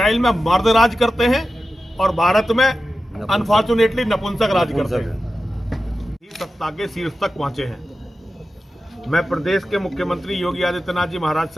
में मर्द राज करते हैं और भारत में अनफॉर्चुनेटली नपुंसक राज करते हैं। सत्ता के शीर्ष तक पहुंचे हैं। मैं प्रदेश के मुख्यमंत्री योगी आदित्यनाथ जी महाराज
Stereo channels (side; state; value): both; normal; correlation 0.93